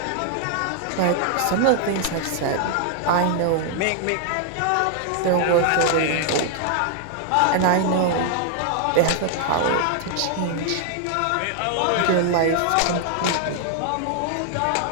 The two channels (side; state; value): both; different; correlation 0.00